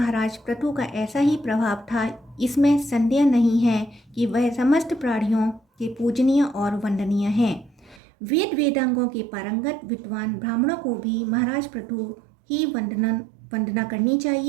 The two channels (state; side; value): drops out; left; at 8.0 s